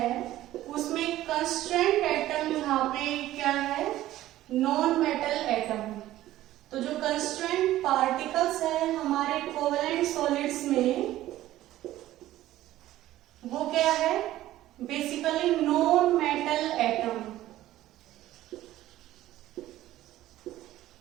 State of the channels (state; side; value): quieter; left; 14.6 dB